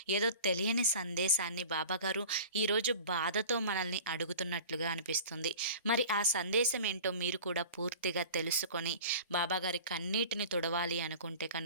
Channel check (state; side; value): inverted; both; correlation -0.39